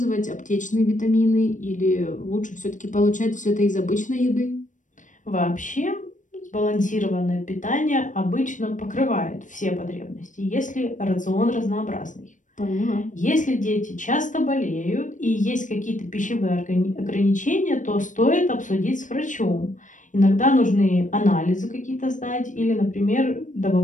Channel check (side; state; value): right; late; 0.37 ms